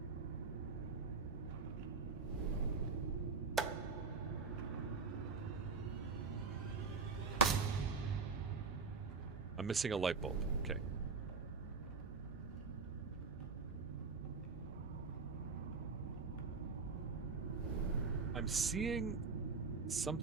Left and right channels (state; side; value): quieter; left; 4.7 dB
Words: I'm missing a light bulb. Okay. I'm seeing